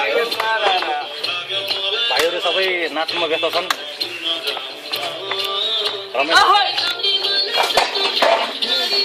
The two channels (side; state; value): both; identical; correlation 1.00